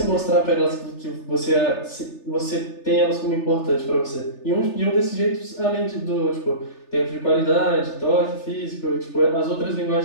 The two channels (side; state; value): right; late; 3.4 ms